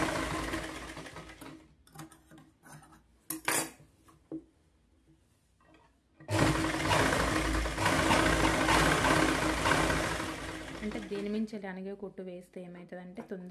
అంటే దీని మించి అనిగే కుట్టు వేస్తే ఏమవుతుందంటే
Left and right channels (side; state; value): both; identical; correlation 1.00